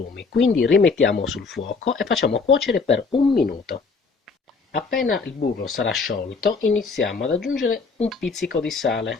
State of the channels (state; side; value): quieter; right; 4.6 dB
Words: Quindi rimettiamo sul fuoco e facciamo cuocere per 1 minuto. Appena il burro sarà sciolto iniziamo ad aggiungere un pizzico di